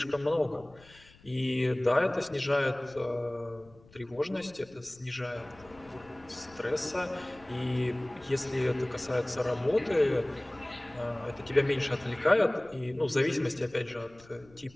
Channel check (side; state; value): left; noise; rumble, 25 dB below the sound